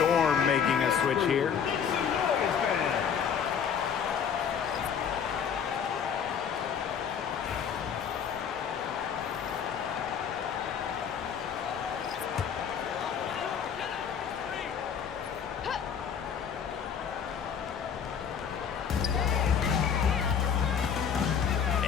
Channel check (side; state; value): right; quieter; 7.5 dB